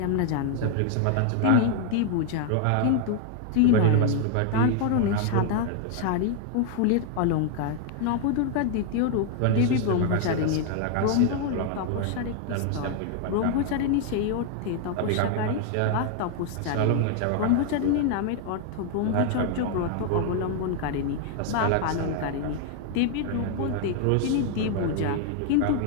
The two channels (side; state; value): both; different; correlation 0.00